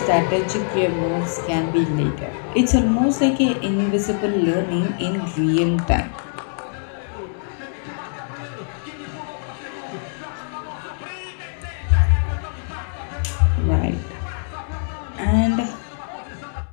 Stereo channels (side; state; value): right; silent; digital silence